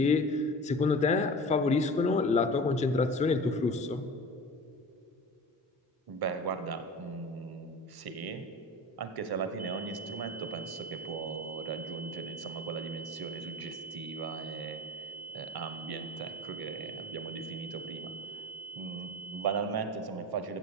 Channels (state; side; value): normal; both; correlation 0.36